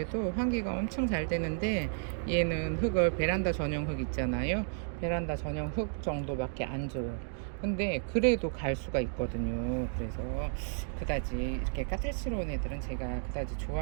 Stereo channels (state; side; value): silent; left; digital silence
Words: 환기가 엄청 잘 되는데 얘는 흙을 베란다 전용 흙 있잖아요. 베란다 전용 흙 정도밖에 안 줘요. 근데 그래도 갈 수가 있거든요. 그래서 그다지 이렇게 까탈스러운 애들은 제가 그다지